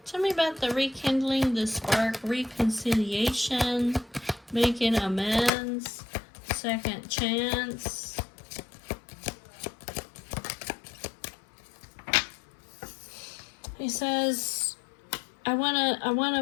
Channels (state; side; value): drops out; right; at 5.5 s